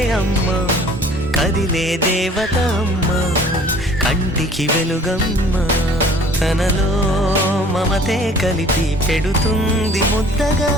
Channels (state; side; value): normal; both; correlation 0.51